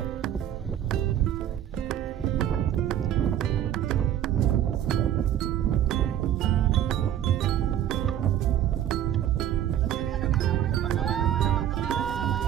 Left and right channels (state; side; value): quieter; left; 10.9 dB